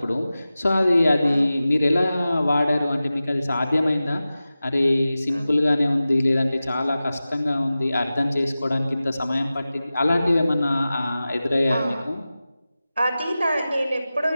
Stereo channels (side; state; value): both; inverted; correlation -0.95